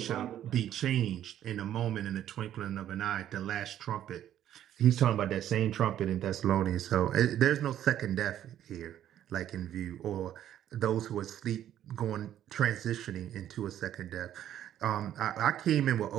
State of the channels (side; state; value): left; quieter; 11.3 dB